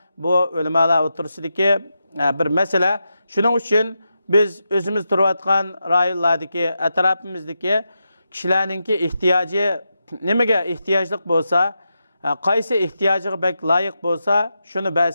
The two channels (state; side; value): inverted; both; correlation -0.87